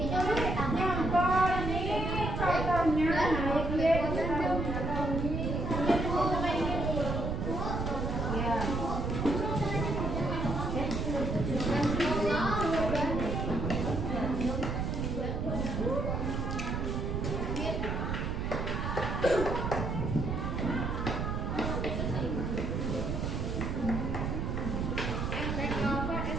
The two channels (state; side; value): noise; right; rumble, 1 dB below the sound